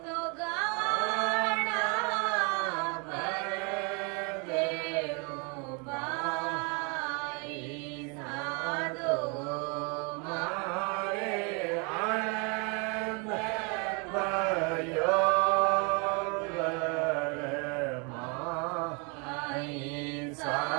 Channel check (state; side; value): quieter; left; 32.2 dB